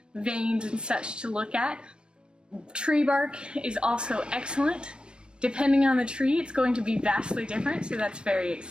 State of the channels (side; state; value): left; late; 0.054 ms